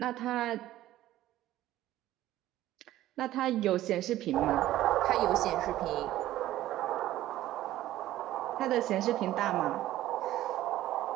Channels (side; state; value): left; quieter; 14.5 dB